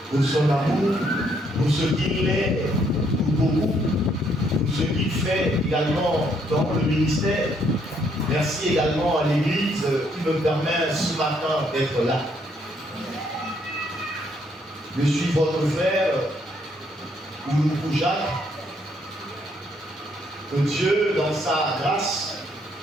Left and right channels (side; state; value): both; normal; correlation 0.70